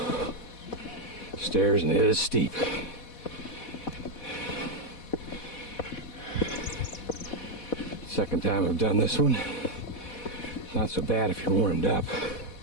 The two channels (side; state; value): right; late; 4.1 ms